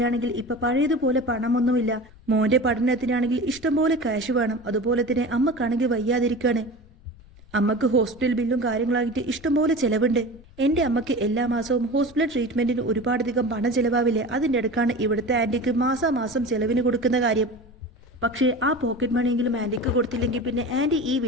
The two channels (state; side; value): noise; left; rumble, 23 dB below the sound